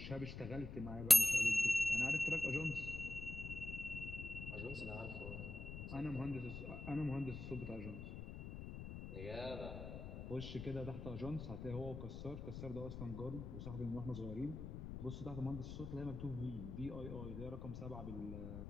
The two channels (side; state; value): left; noise; rumble, 8 dB below the sound